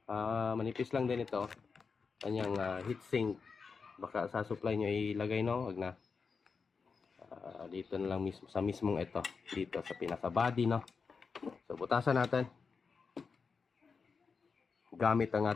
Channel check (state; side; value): quieter; right; 5.2 dB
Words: manipis lang din ito. Kanyang heatsink. Baka sa supply nyo ilagay, no? Huwag na. Dito na lang mismo. Sa mismong ito. Dito sa pinaka-body, no? So, butasan natin. Gamit ang